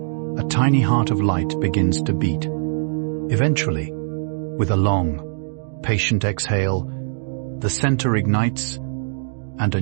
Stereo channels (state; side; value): silent; left; digital silence